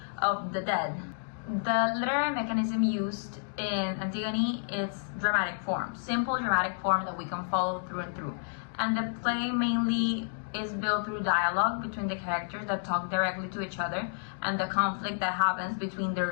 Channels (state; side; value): silent; right; digital silence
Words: of the dead. The literary mechanism used in Antigone is dramatic form, simple dramatic form that we can follow through and through. And the play mainly is built through dialogue between the characters that talk directly to each other, and the conflict that happens between